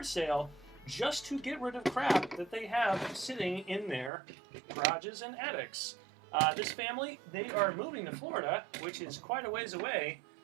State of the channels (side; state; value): left; drops out; at 4.1 s